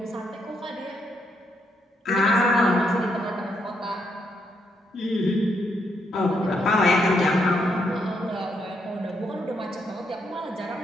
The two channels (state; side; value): normal; both; correlation 0.77